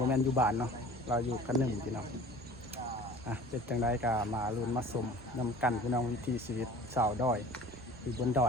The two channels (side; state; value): both; normal; correlation 0.44